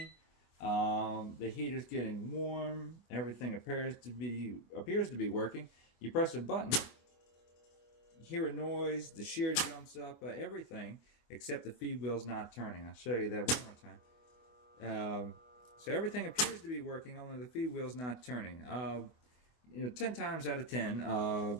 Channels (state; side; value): late; right; 25 ms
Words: the heater's getting warm, everything appears to be working. You press a button, you hear a noise, the shear jumps up, everything except the feed wheel's not turning. I'll show you that one more time. So everything appears to be working, only the feed wheel's not turning. 10 times out of 10,